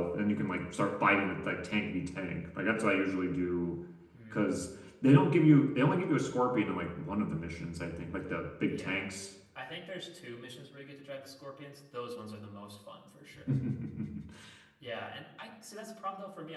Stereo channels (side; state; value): both; identical; correlation 1.00